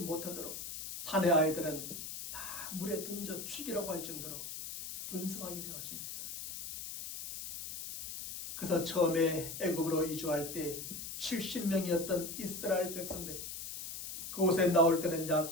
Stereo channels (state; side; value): noise; left; hiss, 8 dB below the sound